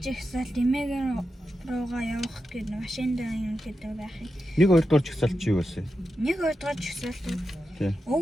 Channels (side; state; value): both; normal; correlation 0.89